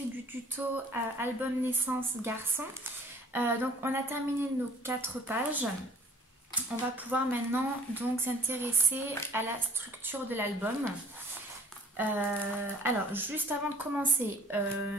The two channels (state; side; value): normal; both; correlation 0.51